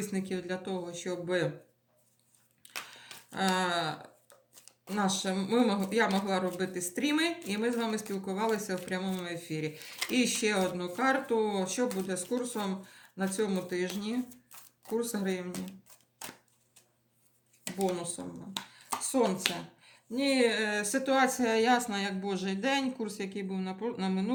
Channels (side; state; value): both; identical; correlation 1.00